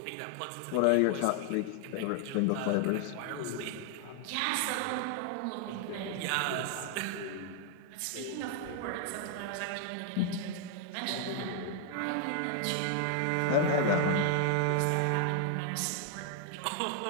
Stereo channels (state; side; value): different; both; correlation 0.00